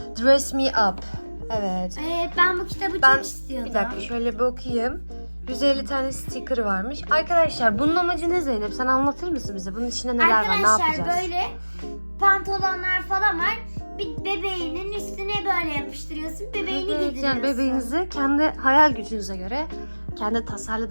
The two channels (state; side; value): inverted; both; correlation -1.00